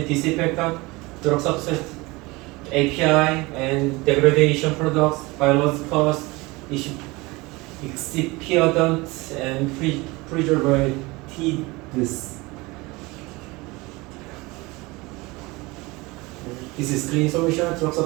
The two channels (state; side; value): quieter; left; 23.3 dB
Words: drug substance, API, and degradation products, biologicals, excipients, and preservatives. This is clean solution, drug